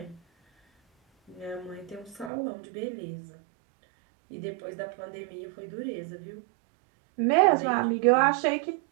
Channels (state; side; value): drops out; left; at 2.3 s